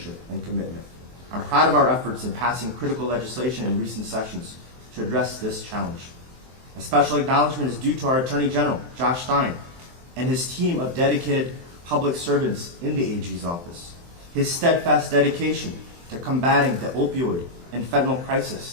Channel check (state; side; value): late; left; 23 ms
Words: and commitment. I'm proud of our efforts in passing critical legislation in recent sessions to address this challenge. A special acknowledgement is due to our Attorney General, Josh Stein, and his team of dedicated public servants in the AG's office. His steadfast dedication to combating the opioid and fentanyl